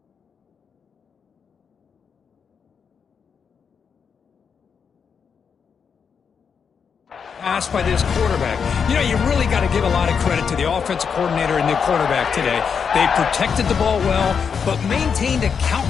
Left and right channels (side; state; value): right; quieter; 6.5 dB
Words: pass by this quarterback. You know, you really got to give a lot of credit to the offensive coordinator and the quarterback today. They protected the ball well, but maintained a